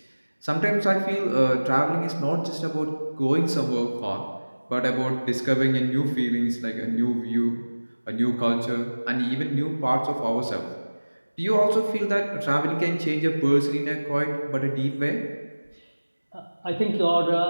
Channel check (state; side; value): inverted; both; correlation -1.00